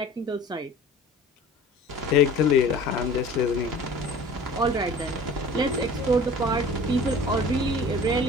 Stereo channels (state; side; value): normal; both; correlation 0.43